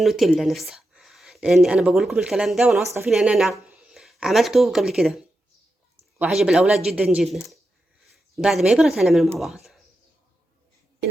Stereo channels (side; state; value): both; normal; correlation 0.88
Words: نفسها، لاني انا بقول لكم الكلام ده وانا واثقة فيه، لان انا عملته قبل كده وعجب الاولاد جدا جدا. بعد ما يبرد هنعمله مع بعض.